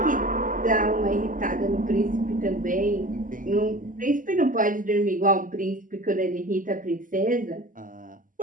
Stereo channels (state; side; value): late; left; 0.39 ms